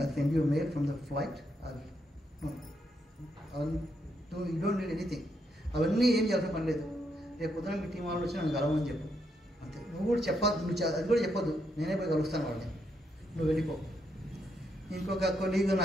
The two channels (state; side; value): normal; both; correlation 0.78